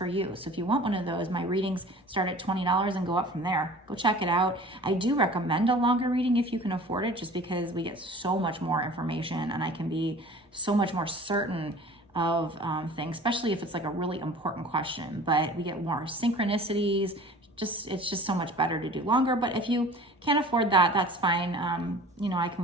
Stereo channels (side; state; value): both; normal; correlation 0.44